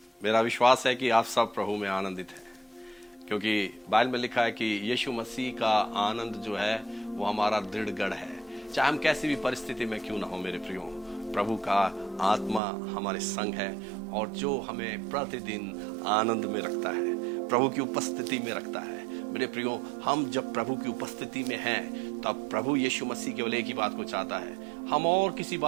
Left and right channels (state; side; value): drops out; left; at 12.6 s